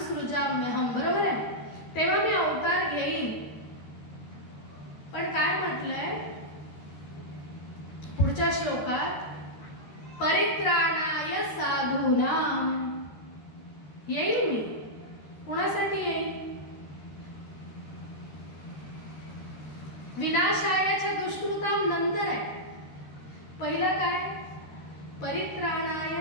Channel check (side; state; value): right; late; 13 ms